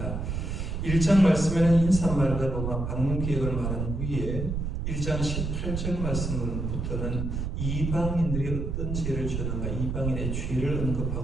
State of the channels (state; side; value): noise; right; rumble, 3 dB below the sound